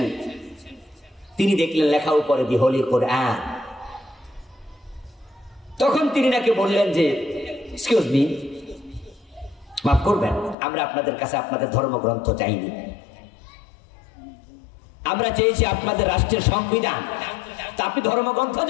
তিনি দেখলেন লেখা উপরে দি হোলি কোরআন। তখন তিনি নাকি বললেন যে, এক্সকিউজ মি, মাফ করবেন, আমরা আপনাদের কাছে আপনাদের ধর্মগ্রন্থ চাইনি, আমরা চেয়েছি আপনাদের রাষ্ট্রের সংবিধান। তা আপনি ধর্মগ্রন্থ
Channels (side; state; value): right; drops out; at 10.6 s